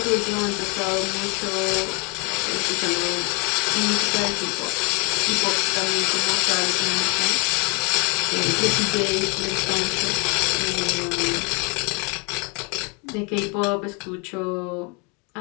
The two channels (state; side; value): quieter; right; 32.8 dB